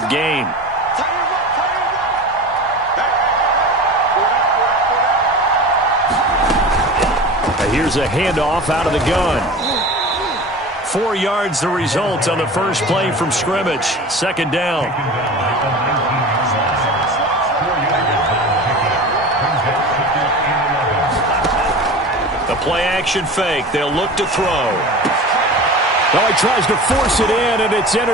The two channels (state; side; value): normal; both; correlation 0.34